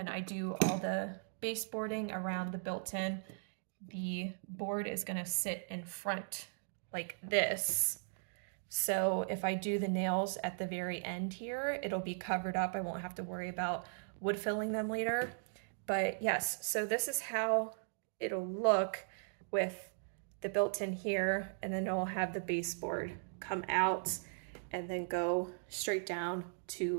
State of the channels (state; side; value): silent; left; digital silence